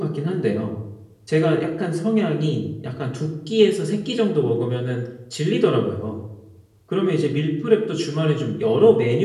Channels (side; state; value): both; identical; correlation 1.00